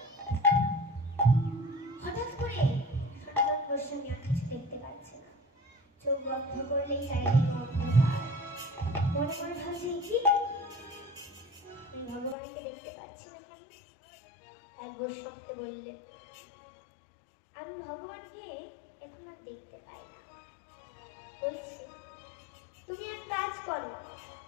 হঠাৎ করে সনাতন গোস্বামী আর কিছু দেখতে পাচ্ছে না, চোখ বন্ধ করলেই চারিদিকে অন্ধকার। মনে মনে ভাবছে, কি আমি ভগবানকে দেখতে পাচ্ছি না কেন? এক গোস্বামীকে বললেন, আমি ভগবানকে এখন আর দেখতে পাই না। বলছে, তুমি এক কাজ করো,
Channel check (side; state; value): right; drops out; at 12.4 s